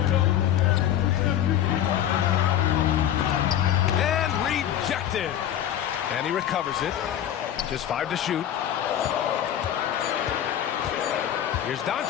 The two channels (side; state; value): right; quieter; 10.9 dB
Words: And rejected. And he recovers it. Just 5 to shoot. Here's